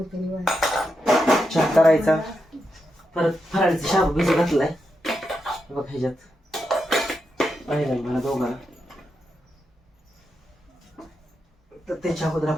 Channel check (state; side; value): normal; both; correlation 0.85